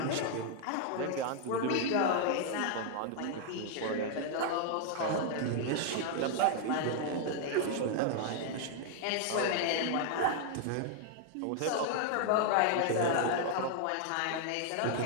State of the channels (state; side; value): different; both; correlation 0.00